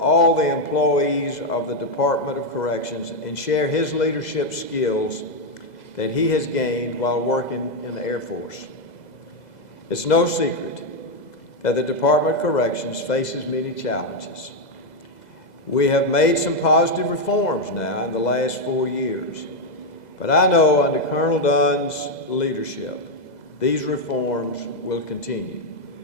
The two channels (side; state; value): right; late; 2.0 ms